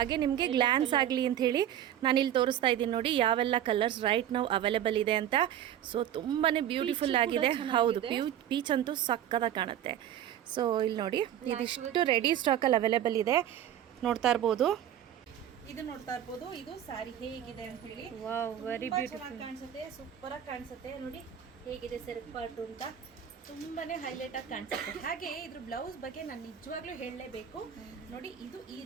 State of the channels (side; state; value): left; quieter; 10.8 dB